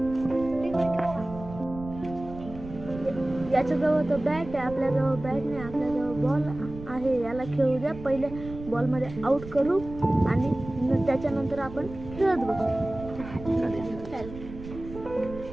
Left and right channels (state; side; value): noise; right; rumble, 13 dB below the sound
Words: याच्याजवळ तर बॅट आहे, आपल्याजवळ बॅट नाही, आपल्याजवळ बॉल आहे. याला खेळू द्या, पहिले बॉलमध्ये आउट करू आणि त्याच्यानंतर आपण खेळत बसू.